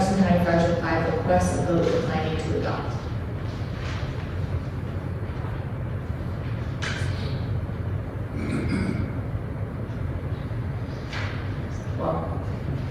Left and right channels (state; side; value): identical; both; correlation 1.00